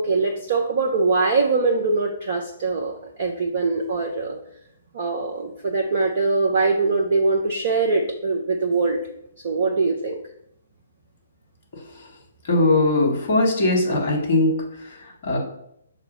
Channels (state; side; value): inverted; both; correlation -0.61